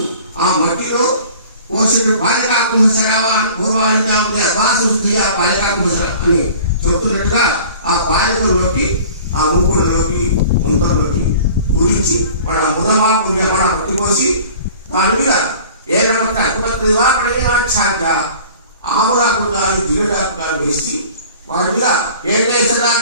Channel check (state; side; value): inverted; both; correlation -0.45